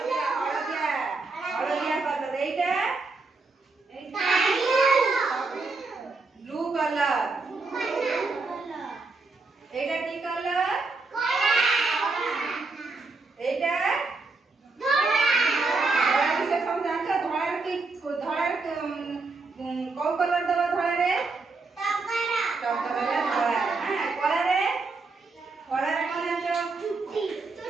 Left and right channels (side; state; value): left; quieter; 3.8 dB